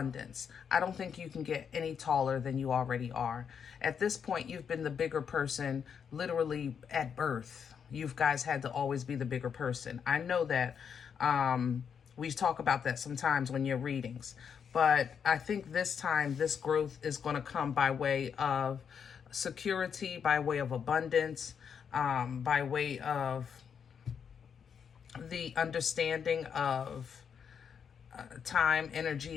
I don't think you can get any taller than you already are. At this point, you've been the bigger person literally at birth. you guys had to always be the bigger person. I know that we talk about that sometimes when you're readings. But I think this time, this growth is going to come by way of security, by way of abundance, by way of the understanding of time,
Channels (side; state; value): right; quieter; 7.2 dB